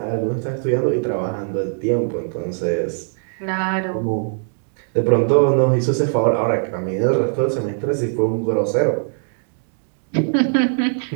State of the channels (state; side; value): silent; left; digital silence